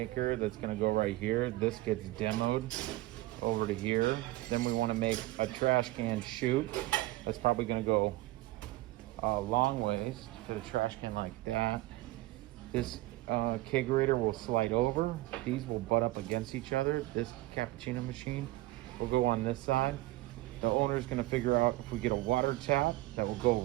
that's gonna go right here. This gets demoed over to here. Then we wanna make a trash can chute. That's probably gonna go a long ways to the trash can like that. This kegerator will slide over. These will butt up against each other. This cappuccino machine will go on this side. The owner's gonna figure out if we get a water tap that will go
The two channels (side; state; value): left; quieter; 18.4 dB